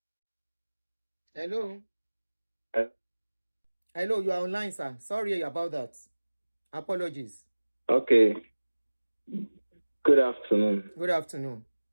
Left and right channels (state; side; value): inverted; both; correlation -1.00